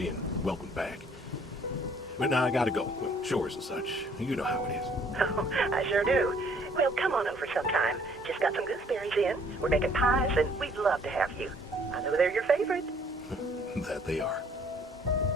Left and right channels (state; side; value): normal; both; correlation 0.60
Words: welcomed back. But now I gotta go. Well, chores and such. You know how it is. Oh, I sure do. Well, come on over sometime. Just got some gooseberries in. We're making pies, and we'd love to have you. I know they're your favorite. That they are.